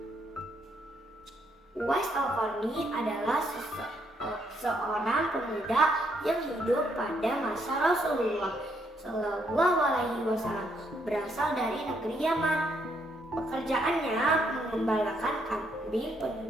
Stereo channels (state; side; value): normal; both; correlation 0.73